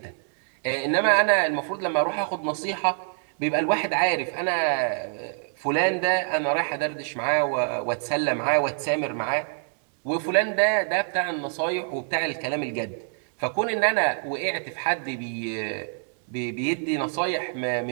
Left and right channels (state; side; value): silent; left; 61 dB below the other